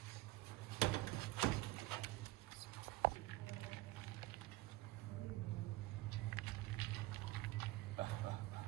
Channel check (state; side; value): quieter; left; 18.5 dB